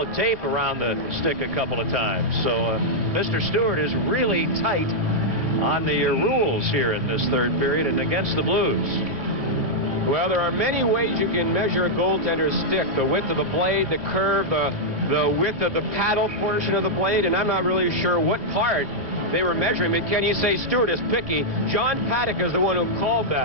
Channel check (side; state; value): left; late; 1.7 ms